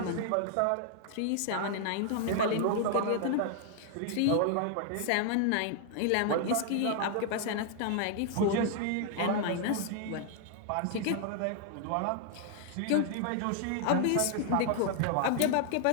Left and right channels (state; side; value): different; both; correlation 0.00